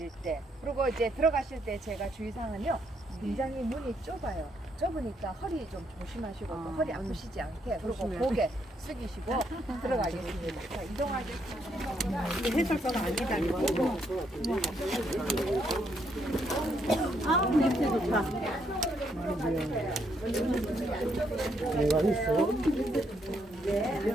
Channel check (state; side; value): normal; both; correlation 0.74